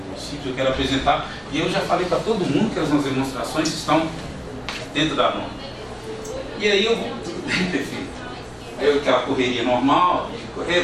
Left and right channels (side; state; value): both; identical; correlation 1.00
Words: eu quero apresentar, e eu já falei para todo mundo que as nossas demonstrações estão dentro da norma. E aí eu vou, tudo bem, prefeito. Aí aquela correria normal, de correr,